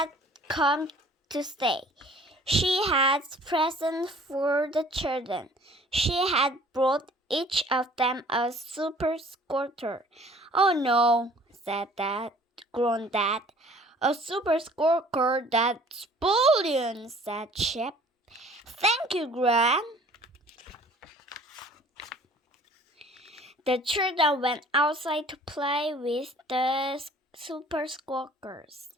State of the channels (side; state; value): both; normal; correlation 0.52